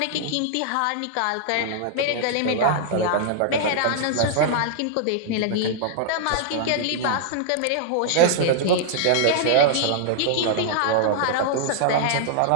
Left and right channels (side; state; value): both; different; correlation -0.01